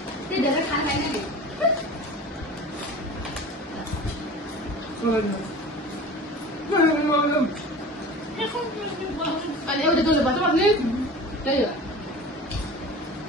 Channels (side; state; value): both; normal; correlation 0.37